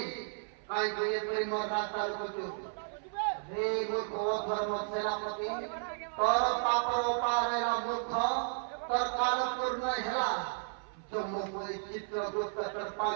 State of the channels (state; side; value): silent; left; 55 dB below the other